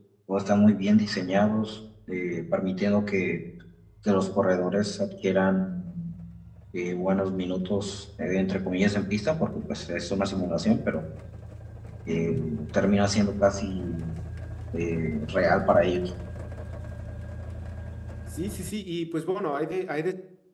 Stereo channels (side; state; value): both; identical; correlation 1.00